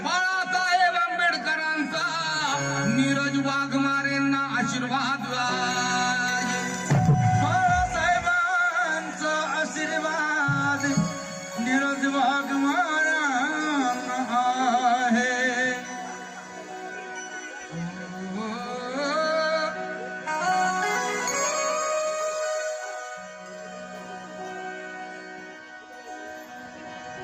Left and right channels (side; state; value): both; identical; correlation 1.00